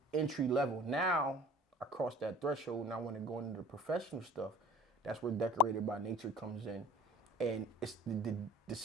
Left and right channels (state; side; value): normal; both; correlation 0.45